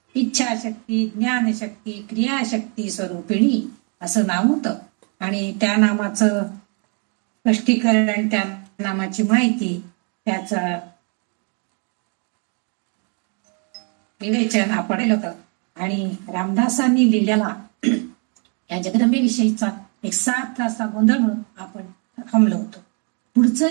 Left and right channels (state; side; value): quieter; left; 37.7 dB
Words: इच्छाशक्ती ज्ञानशक्ती क्रियाशक्ती स्वरूपिणी असं नाव होतं। आणि त्या नामाचं स्पष्टीकरण, त्या नामाची माहिती, त्याचं विवेचन आपण केलं होतं। आणि रामदासांनी लिहिलेला या जगदंबेविषयीचा एक 7 तासा गोंधळ म्हणून आपण थांबलो होतो। पुढचं